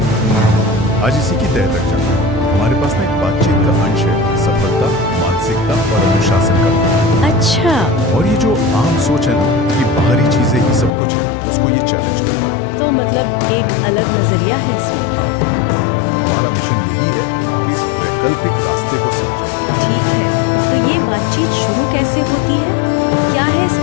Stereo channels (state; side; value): drops out; right; at 10.9 s